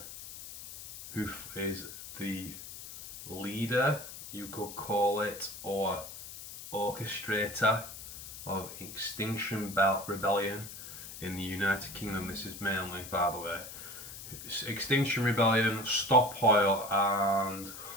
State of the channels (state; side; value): noise; left; hiss, 12 dB below the sound